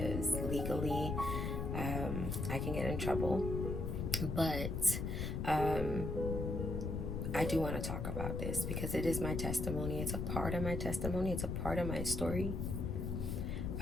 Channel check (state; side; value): noise; left; rumble, 2 dB below the sound